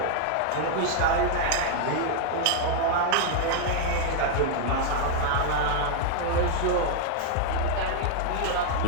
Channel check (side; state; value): both; different; correlation 0.00